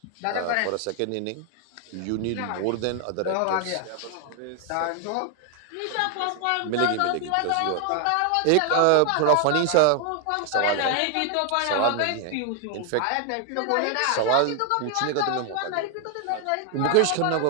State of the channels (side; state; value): both; different; correlation 0.00